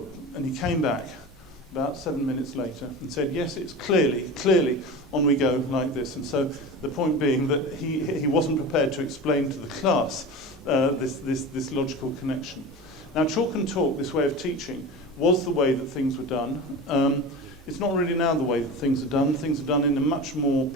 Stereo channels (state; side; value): normal; both; correlation 0.30